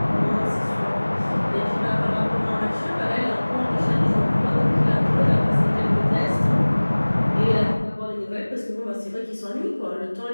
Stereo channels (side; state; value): both; inverted; correlation -1.00